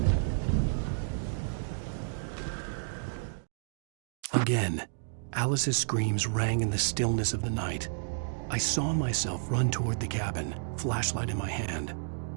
Again, Alice's screams rang in the stillness of the night. I saw myself run toward the cabin, flashlight in my hand.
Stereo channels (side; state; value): left; silent; digital silence